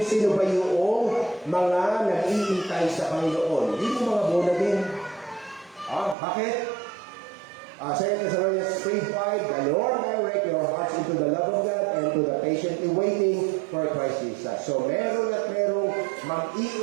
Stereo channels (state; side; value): drops out; left; at 6.2 s